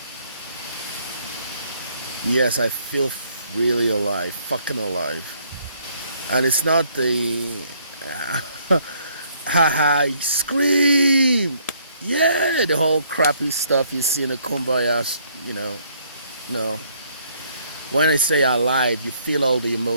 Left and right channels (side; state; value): both; inverted; correlation -0.66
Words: Yes, I feel really alive, fucking alive. And it's not the haha, scream, yeah, the whole crappy stuff you see in the Kumbaya, no. When I say alive, you feel all the